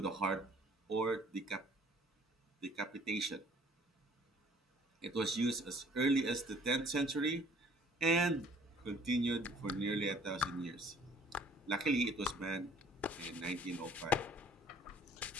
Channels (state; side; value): normal; both; correlation 0.56